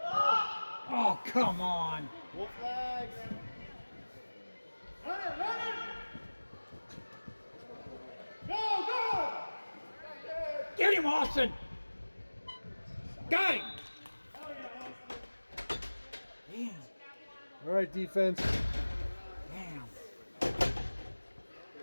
Oh, come on. Wolf flags. Run it, run it! Go, go! Get him, Austin! Got him! Damn. All right, defense. Damn.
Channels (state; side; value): inverted; both; correlation -1.00